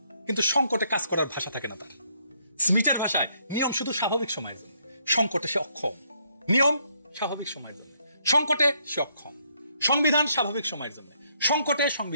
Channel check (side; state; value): both; inverted; correlation -0.72